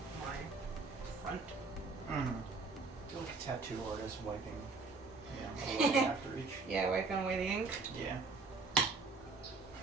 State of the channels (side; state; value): left; quieter; 4.0 dB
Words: my front. Feel like a tattoo artist wiping, away after each. Yeah, wiping away the ink. Yeah. I